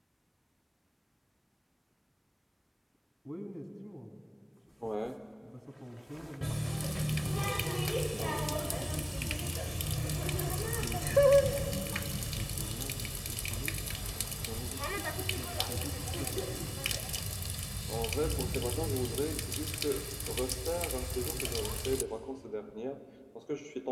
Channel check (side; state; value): both; identical; correlation 1.00